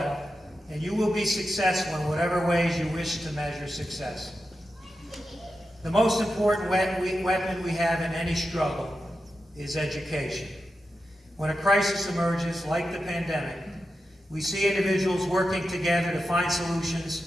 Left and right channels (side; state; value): both; normal; correlation 0.89